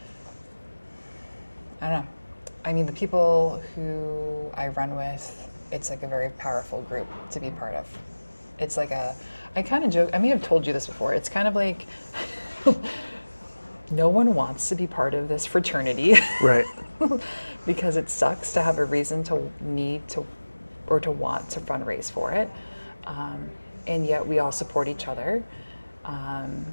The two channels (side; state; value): both; inverted; correlation -1.00